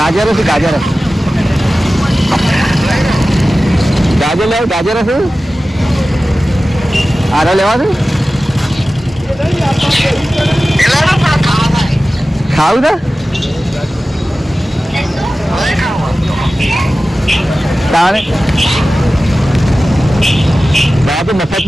શું? ગાજર લેવું. ગાજર શું આરે લેવા છે? ખાવું છે તારે તો મફત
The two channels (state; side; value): normal; both; correlation 0.95